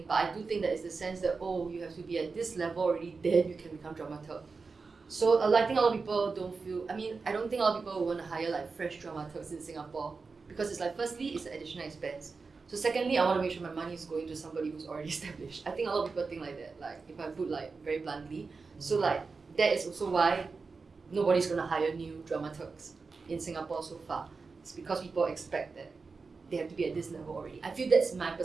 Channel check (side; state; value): left; quieter; 4.5 dB